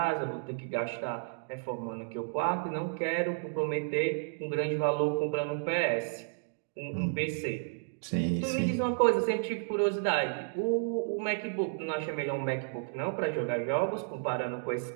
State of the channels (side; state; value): left; silent; digital silence